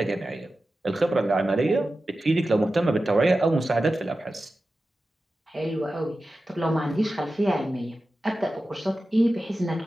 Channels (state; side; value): normal; both; correlation 0.93